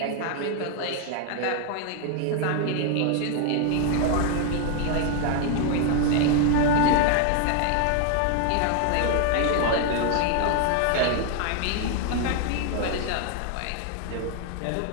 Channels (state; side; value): different; both; correlation 0.00